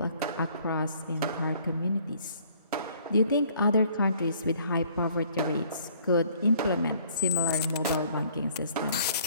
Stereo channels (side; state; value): both; inverted; correlation -0.59